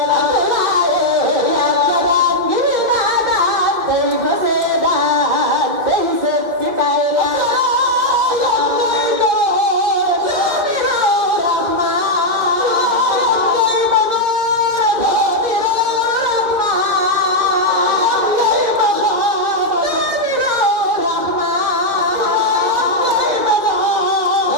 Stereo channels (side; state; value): left; late; 2.2 ms